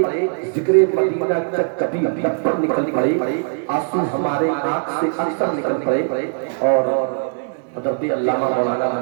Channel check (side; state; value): left; silent; digital silence